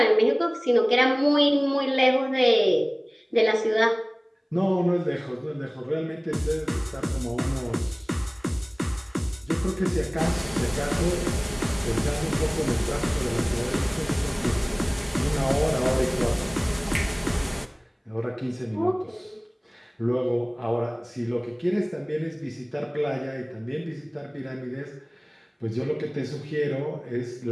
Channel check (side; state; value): both; identical; correlation 1.00